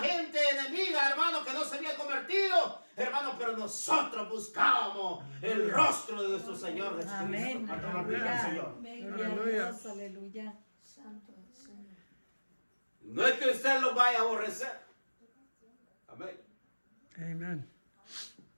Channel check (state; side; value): inverted; both; correlation -1.00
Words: gente enemiga, hermanos, que no se habían convertido, hermano, pero nosotros buscábamos el rostro de nuestro Señor Jesucristo. Amén. ¿Cuánto glorifican al Señor? Gloria a Dios, aleluya. Santo el Señor. No es que usted lo vaya a aborrecer. Amén. Amen.